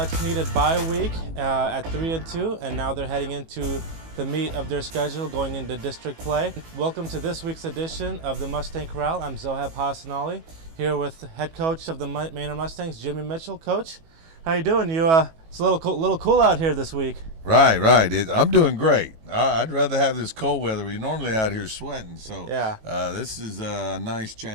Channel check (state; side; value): late; left; 18 ms